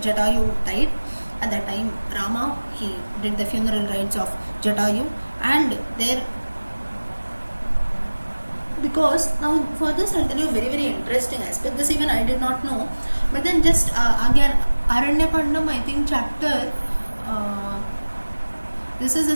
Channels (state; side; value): inverted; both; correlation -1.00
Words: died. At that time Rama, he did the funeral rites of Jatayu, and there, because now for this I'll tell you a very very interesting aspect. This even I did not know, but then just again Aranyakandam, I think chapter this is